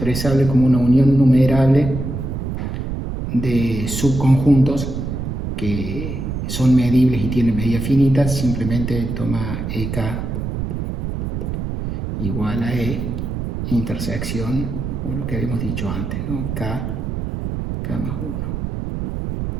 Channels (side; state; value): right; noise; rumble, 4 dB below the sound